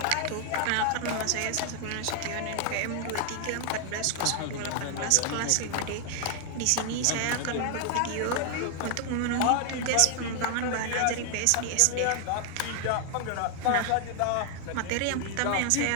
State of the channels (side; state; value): both; different; correlation 0.00